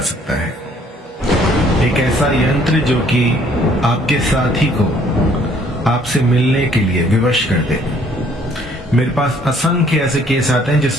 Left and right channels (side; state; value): both; normal; correlation 0.61